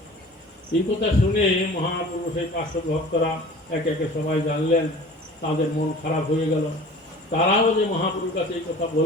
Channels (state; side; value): normal; both; correlation 0.43